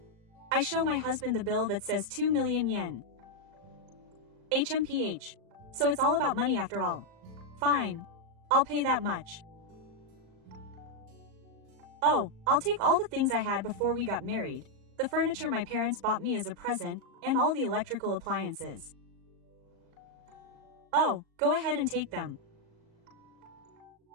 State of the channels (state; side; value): late; left; 37 ms